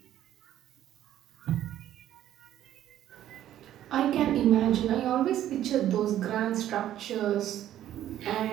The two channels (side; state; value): left; quieter; 12.0 dB